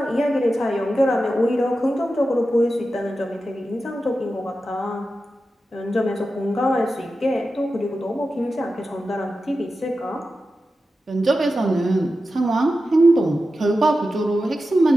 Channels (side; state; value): both; normal; correlation 0.92